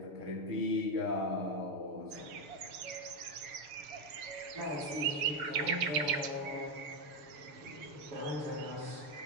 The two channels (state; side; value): late; left; 6.8 ms